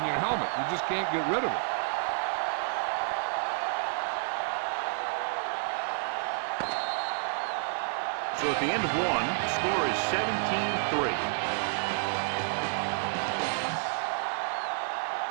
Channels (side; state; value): left; silent; 58 dB below the other